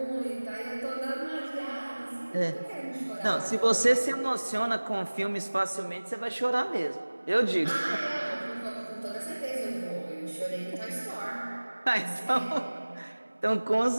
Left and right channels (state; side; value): inverted; both; correlation -1.00